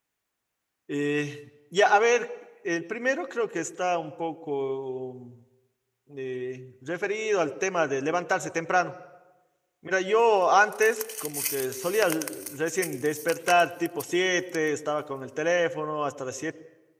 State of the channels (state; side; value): identical; both; correlation 1.00